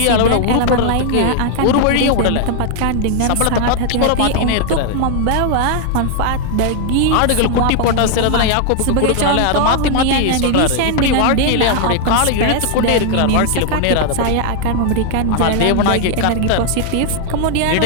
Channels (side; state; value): both; different; correlation 0.00